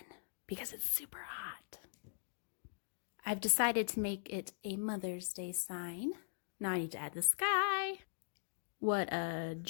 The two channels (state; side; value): silent; right; digital silence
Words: because it's super hot. I've decided to make it a Mother's Day sign. Now I need to add the sky. What a